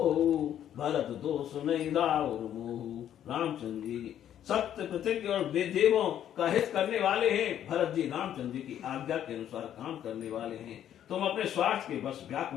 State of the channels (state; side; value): quieter; right; 10.5 dB